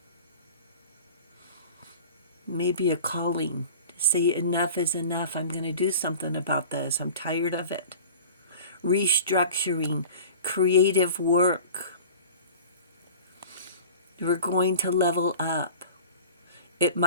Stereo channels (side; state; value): both; inverted; correlation -0.40